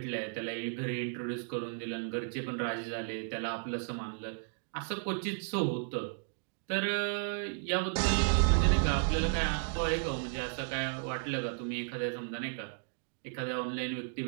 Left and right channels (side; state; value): left; silent; digital silence